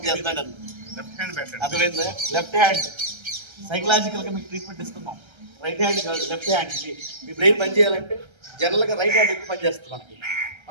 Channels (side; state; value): left; late; 1.3 ms